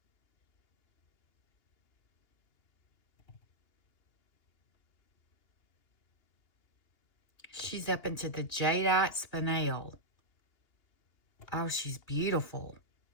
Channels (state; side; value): late; right; 2.8 ms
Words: She's up into the jadeite spinel. Oh, she's beautiful.